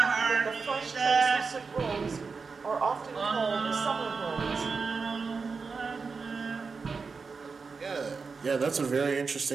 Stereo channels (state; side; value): quieter; left; 4.8 dB